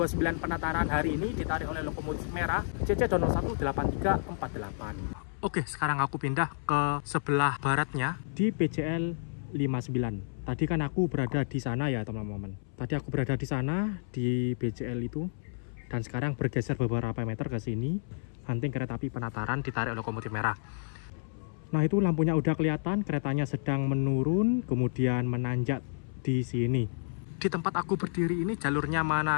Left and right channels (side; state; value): right; silent; 57 dB below the other